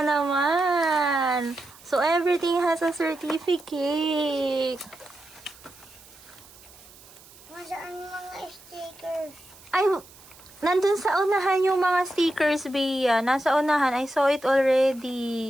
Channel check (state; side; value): noise; right; hiss, 23 dB below the sound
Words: naman. So, everything has a certificate. Masaan mga stickers? Ay, nandun sa unahan yung mga stickers, Bea. Nasa unahan. I saw it